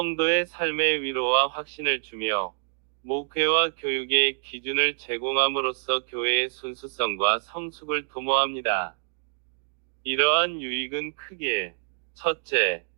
삶의 위로와 확신을 주며 목회와 교육의 기준을 제공함으로써 교회의 순수성과 성숙을 도모합니다. 이러한 유익은 크게 첫째,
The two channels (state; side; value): silent; left; 60 dB below the other